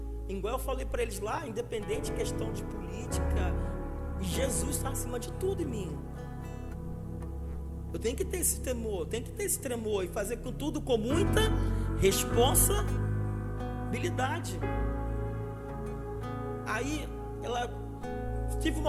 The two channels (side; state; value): both; identical; correlation 1.00